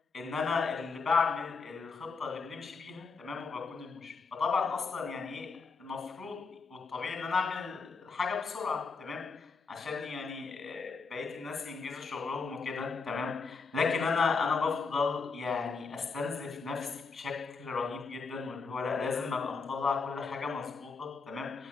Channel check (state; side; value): quieter; right; 4.8 dB